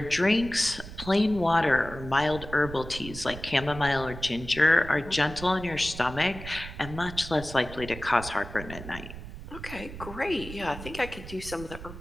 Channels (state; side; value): noise; right; rumble, 12 dB below the sound